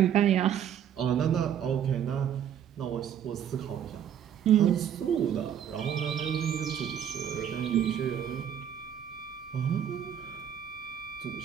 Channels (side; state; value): left; quieter; 9.3 dB